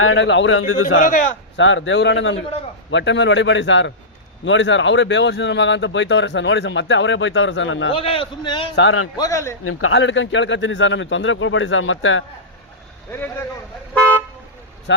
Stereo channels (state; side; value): normal; both; correlation -0.14